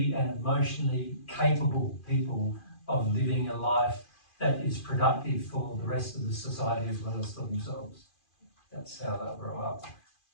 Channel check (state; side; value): late; right; 2.5 ms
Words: and emotionally capable people of living a life that is productive for the rest of the society as well as for themselves. That's how they'll grow up.